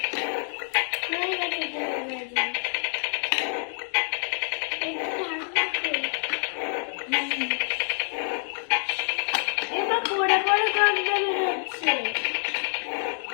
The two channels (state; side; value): silent; right; 60 dB below the other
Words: হয়ে গেছে ডিম ভাজি। এবার পড়ে পড়ে গন্ধ বেরোচ্ছে।